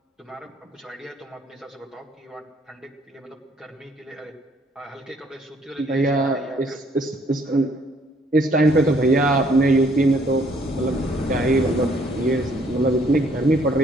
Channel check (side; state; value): both; normal; correlation 0.64